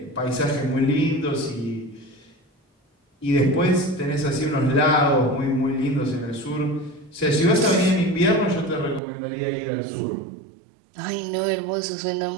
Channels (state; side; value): drops out; left; at 9.0 s